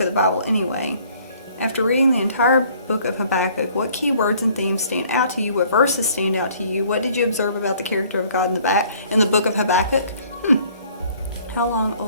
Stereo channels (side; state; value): both; inverted; correlation -0.58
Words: of the Bible anyway. After reading the entire book of Habakkuk, what key words and themes stand out to you? What verses stand out to you? What did you observe about the character of God in the book of Habakkuk? How long,